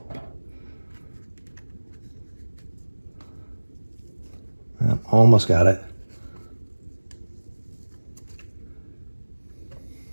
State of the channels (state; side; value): inverted; both; correlation -1.00